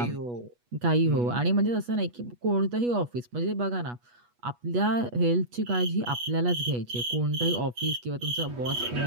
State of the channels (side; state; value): left; late; 8.3 ms